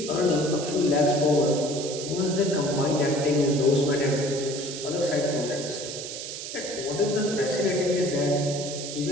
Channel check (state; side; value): noise; right; hiss, 8 dB below the sound